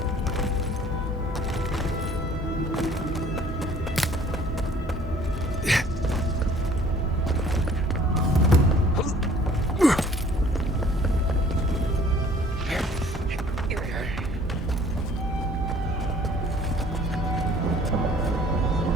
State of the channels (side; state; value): both; normal; correlation 0.54